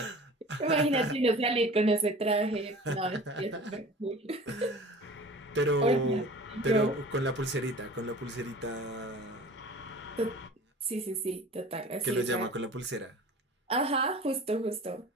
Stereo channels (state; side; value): normal; both; correlation 0.42